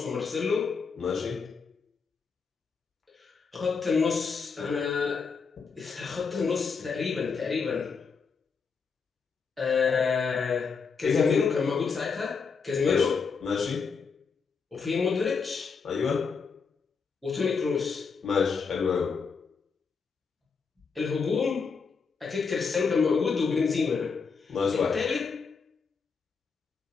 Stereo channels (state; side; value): quieter; right; 5.3 dB